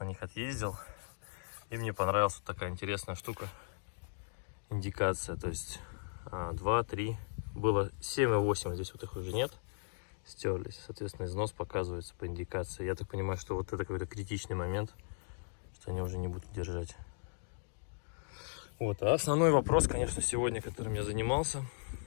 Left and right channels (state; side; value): silent; right; digital silence